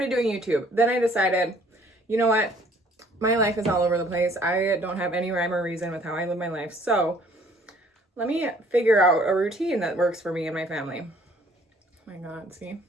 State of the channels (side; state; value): both; normal; correlation 0.59